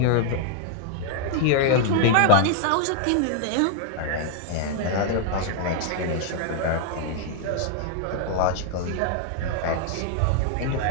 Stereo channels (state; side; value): different; both; correlation 0.00